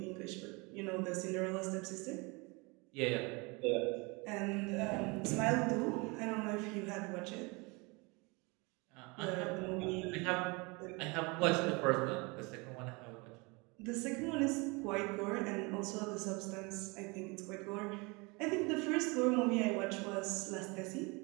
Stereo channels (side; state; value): left; quieter; 27.8 dB